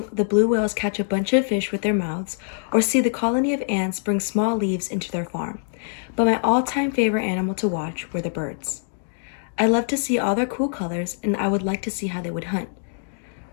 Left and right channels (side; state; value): right; silent; digital silence